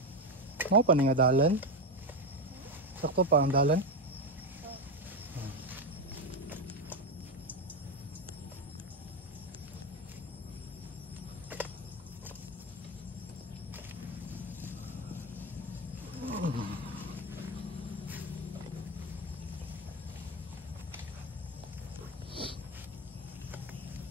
Mau pa ni nga dalan? Sakto pa ang dalan?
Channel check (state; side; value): normal; both; correlation 0.12